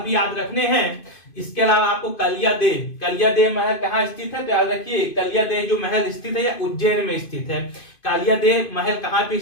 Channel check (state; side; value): late; right; 2.5 ms